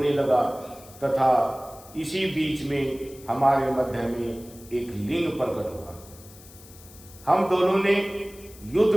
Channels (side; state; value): left; noise; hiss, 21 dB below the sound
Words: लगा तथा इसी बीच में हमारे मध्य में एक लिंग प्रकट हुआ। हम दोनों ने